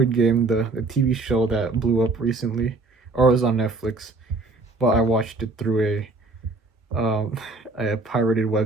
Game, the TV show that blew up recently, or it was on Netflix, but I watched it through a pirated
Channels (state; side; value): quieter; left; 3.3 dB